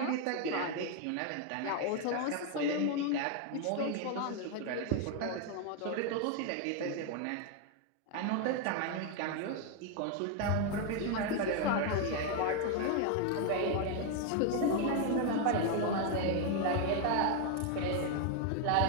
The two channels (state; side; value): different; both; correlation 0.01